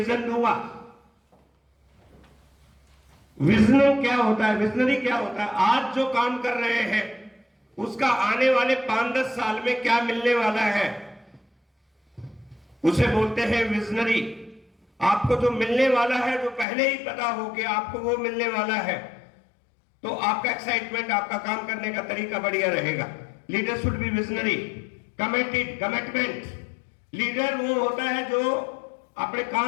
दूंगा। विजन क्या होता है, विजनरी क्या होता है? आज जो काम कर रहे हैं उसका आने वाले 5-10 साल में क्या मिलने वाला है, उसे बोलते हैं विजनरी। आपको जो मिलने वाला है, जो पहले ही पता हो कि आपको वो मिलने वाला है, तो आपका एक्साइटमेंट, आपका काम करने का तरीका बढ़िया रहेगा। Leader should be visionary. Committed, commitment. Leader वो होता है जो अपने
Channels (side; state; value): right; drops out; at 16.7 s